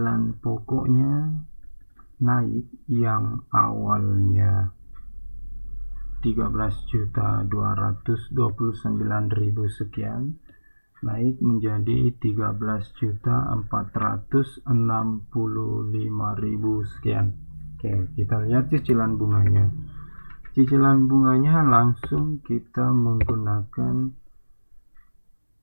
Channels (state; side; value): inverted; both; correlation -1.00